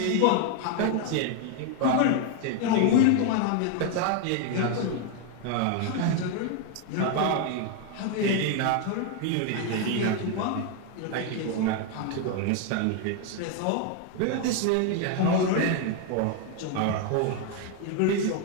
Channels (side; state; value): both; different; correlation 0.01